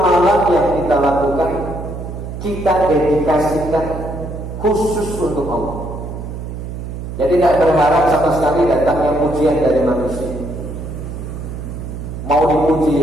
yang kita lakukan kita dedikasikan khusus untuk Allah. Jadi tidak berharap sama sekali datangnya pujian dari manusia. Mau dipuji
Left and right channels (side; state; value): right; noise; hum, 8 dB below the sound